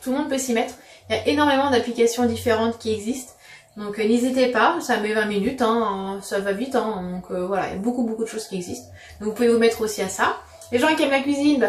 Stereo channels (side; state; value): both; identical; correlation 1.00